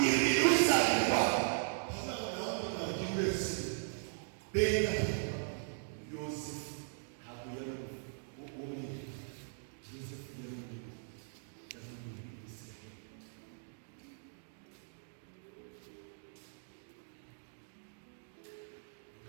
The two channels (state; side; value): silent; left; digital silence